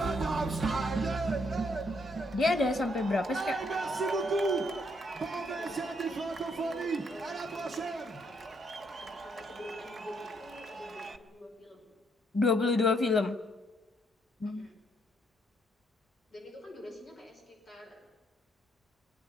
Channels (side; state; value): both; normal; correlation 0.73